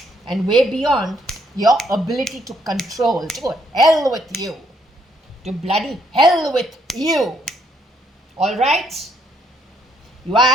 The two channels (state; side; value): normal; both; correlation 0.71